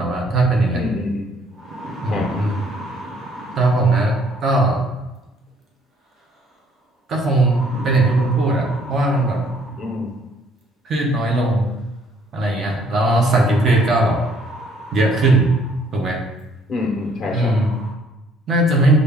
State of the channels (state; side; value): normal; both; correlation 0.62